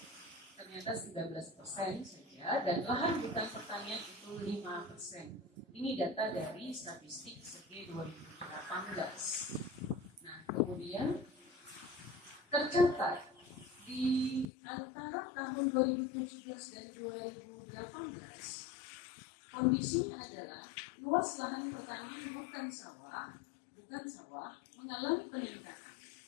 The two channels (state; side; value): drops out; right; at 14.5 s